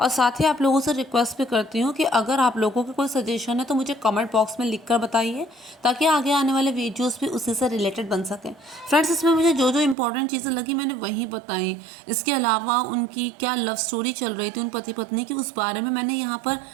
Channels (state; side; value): drops out; left; at 10.0 s